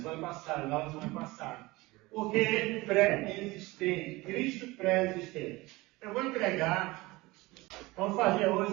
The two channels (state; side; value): quieter; left; 21.4 dB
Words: passada. Porque pré-existente, Cristo pré-existente. Eu vou vamos fazer hoje